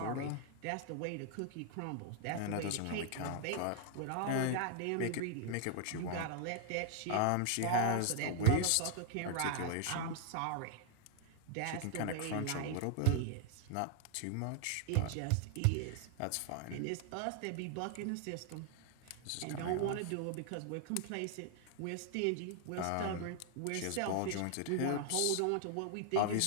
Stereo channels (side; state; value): both; different; correlation 0.00